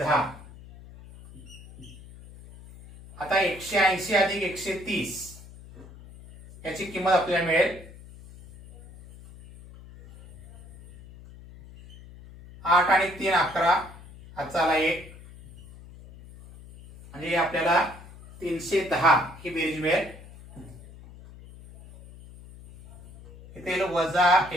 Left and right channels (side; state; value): left; noise; hum, 19 dB below the sound